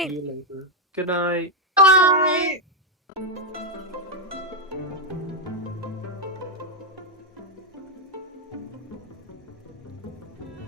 See you later. Good night. Bye. Bye.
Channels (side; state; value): both; normal; correlation 0.03